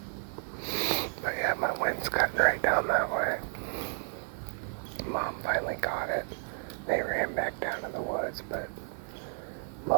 But yeah, my wind's cutting right down that way. Mom finally got it. They ran back down to the woods, but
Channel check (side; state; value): left; silent; 56 dB below the other